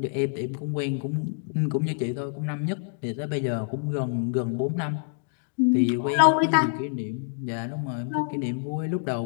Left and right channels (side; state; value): right; silent; digital silence